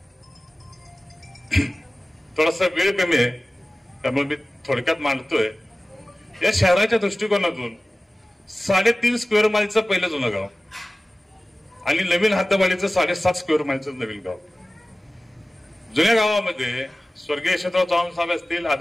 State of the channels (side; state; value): both; normal; correlation 0.97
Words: थोडासा वेळ कमी आहे त्यामुळे मी थोडक्यात मांडतोय। या शहराच्या दृष्टिकोनातून 3.5 स्क्वेअर माईलचं पहिलं जुनं गाव आणि नवीन हद्दवाढीचं 7.5 स्क्वेअर माईलचं नवीन गाव। जुन्या गावामध्ये स्वर्गीय यशवंतराव चव्हाण साहेब असतील,